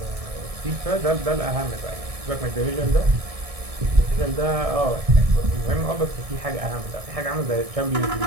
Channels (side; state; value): left; late; 1.6 ms